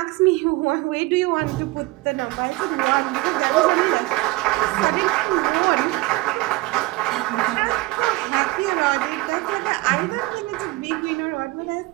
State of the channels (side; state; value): left; quieter; 20.7 dB